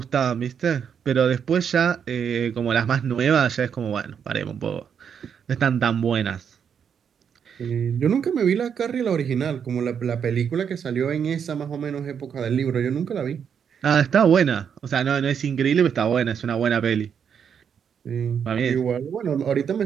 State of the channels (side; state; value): left; quieter; 7.6 dB